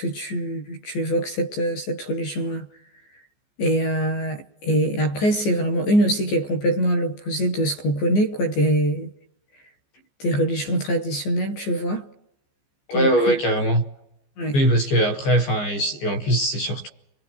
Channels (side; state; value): right; late; 14 ms